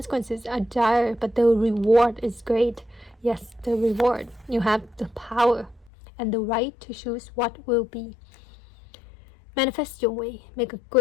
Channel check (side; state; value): right; drops out; at 5.9 s